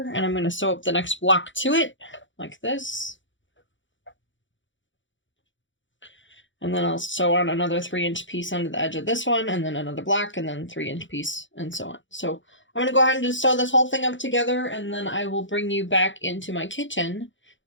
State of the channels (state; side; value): late; right; 0.55 ms